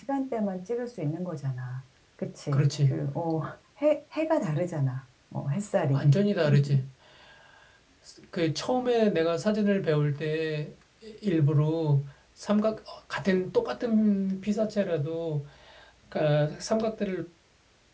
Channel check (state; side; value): identical; both; correlation 1.00